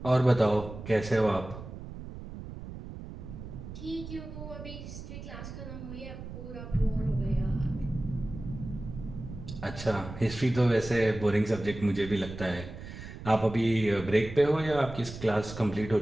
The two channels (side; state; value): right; noise; rumble, 11 dB below the sound